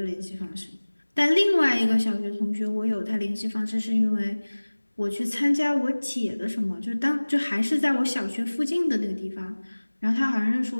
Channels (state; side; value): inverted; both; correlation -1.00